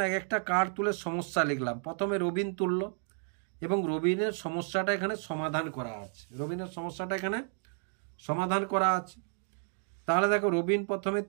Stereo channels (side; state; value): left; silent; 57 dB below the other